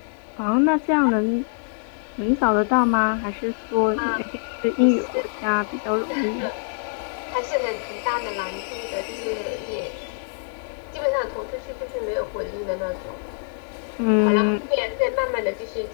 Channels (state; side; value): silent; right; digital silence